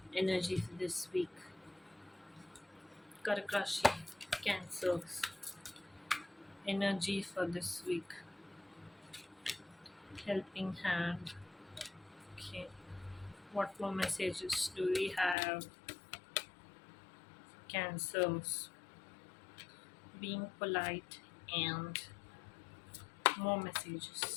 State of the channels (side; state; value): right; drops out; at 15.4 s